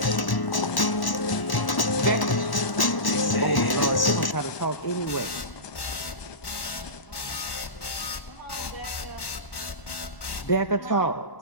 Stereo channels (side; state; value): right; late; 1.1 ms